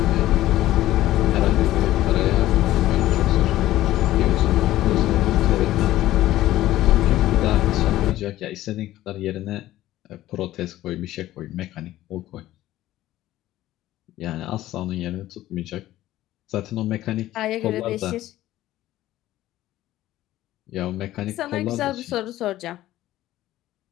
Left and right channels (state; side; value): quieter; right; 14.8 dB